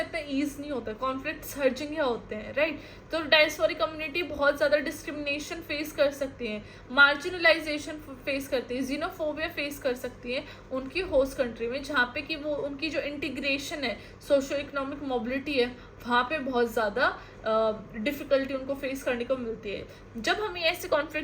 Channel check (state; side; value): identical; both; correlation 1.00